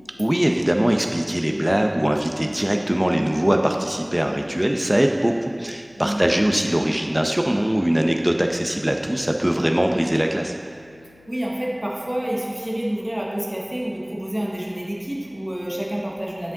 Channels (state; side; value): noise; left; hum, 30 dB below the sound